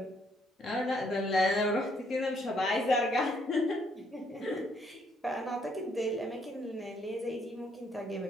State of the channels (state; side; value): normal; both; correlation 0.70